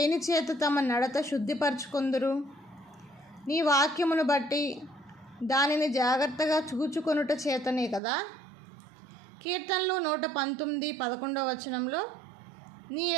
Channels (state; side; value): drops out; left; at 8.0 s